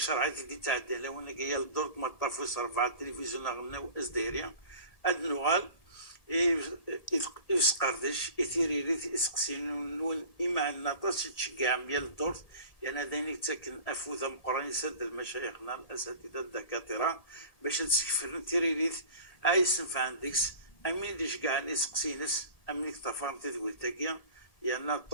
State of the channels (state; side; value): late; right; 1.7 ms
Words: عادي دي تعدى لو انا جايه للدور ما طافوس رفع التلفزيون غناو ازدهريا اد نغال يسقردش يثيريريت يسقسين نون اما النطاس تشجع ميال الدور يعني هذين تسكن افوذ مقران يسد المشايخنا الاساتذه الدكاتره باش تسكفر تيريريت ايسنف عندكس امين ديش كاع يسقسينس امين تفهم تدويل تاكيا يعني